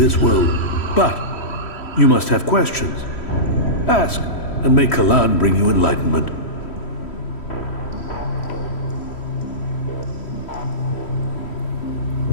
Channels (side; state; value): right; late; 3.1 ms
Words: world. But you must have questions. Ask, and may Kalan bring you enlightenment.